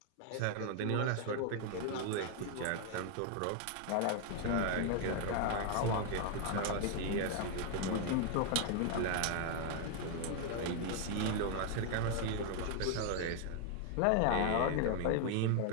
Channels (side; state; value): both; different; correlation 0.00